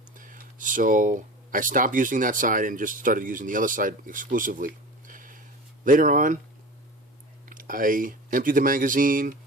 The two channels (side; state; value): both; normal; correlation 0.34